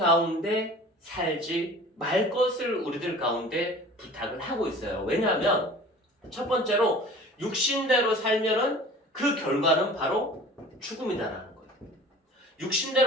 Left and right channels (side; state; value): both; normal; correlation 0.43